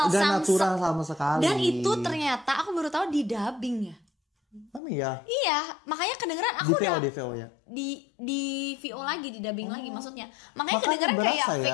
nggak natural sama sekali. Dan itu ternyata aku baru tahu di dubbing ya. ya. Iya, makanya kedengeran aku Di VO, udah di VO ya. di VO lagi, di dubbing lagi maksudnya. Makanya Makanya kedengeran kayak berasa fake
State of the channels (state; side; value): drops out; right; at 4.8 s